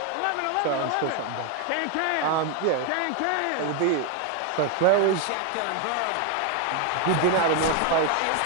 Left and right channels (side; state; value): both; different; correlation 0.01